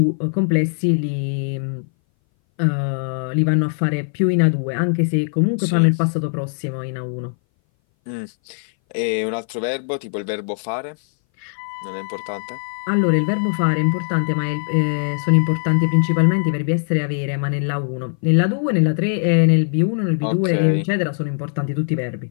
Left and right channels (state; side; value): silent; right; 60 dB below the other